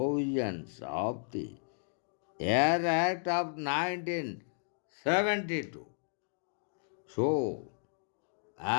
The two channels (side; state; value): right; silent; digital silence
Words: of the Air Act of 1972. So,